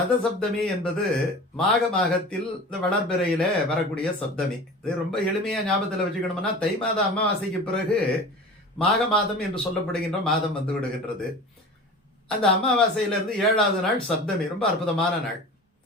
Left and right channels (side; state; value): both; normal; correlation 0.37